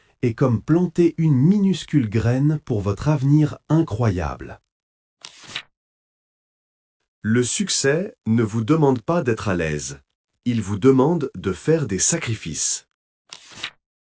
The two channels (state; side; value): identical; both; correlation 1.00